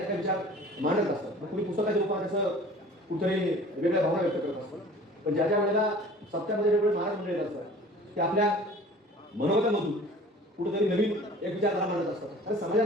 काही विचार मांडत असतात. मग कुणी पुस्तकाच्या रूपात त्याचं कुठेतरी वेगळ्या भावना व्यक्त करत असतात. पण ज्या ज्या वेळेला सप्त्यामध्ये वेगवेगळे महाराज मंडळी असतात ते आपल्या मनोगतामधून कुठेतरी नवीन एक विचारधारा मांडत असतात. आणि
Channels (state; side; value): normal; both; correlation 0.46